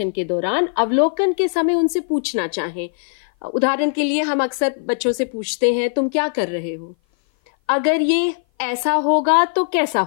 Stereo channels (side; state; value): right; silent; 57 dB below the other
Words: के दौरान अवलोकन के समय उनसे पूछना चाहें। उदाहरण के लिए हम अक्सर बच्चों से पूछते हैं, तुम क्या कर रहे हो? अगर ये ऐसा होगा तो कैसा